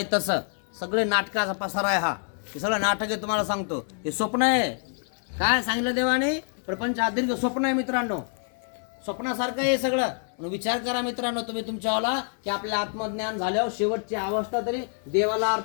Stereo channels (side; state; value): right; silent; 57 dB below the other